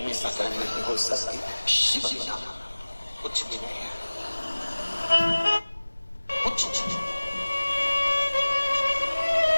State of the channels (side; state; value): both; inverted; correlation -1.00